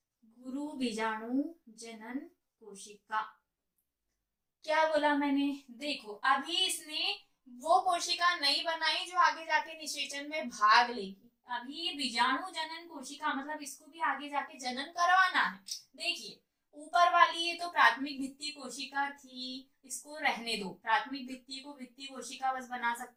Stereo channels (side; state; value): both; identical; correlation 1.00